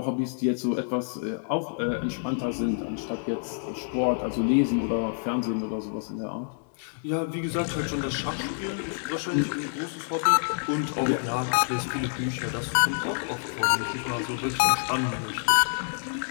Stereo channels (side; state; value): right; silent; digital silence